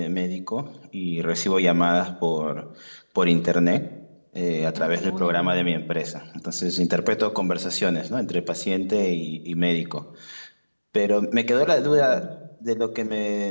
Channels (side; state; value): both; inverted; correlation -1.00